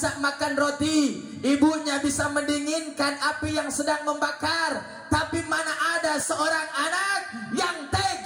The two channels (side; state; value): both; identical; correlation 1.00